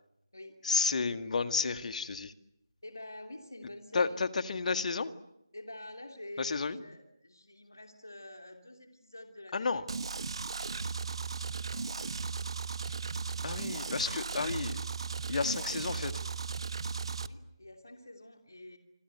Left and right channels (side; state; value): both; inverted; correlation -0.45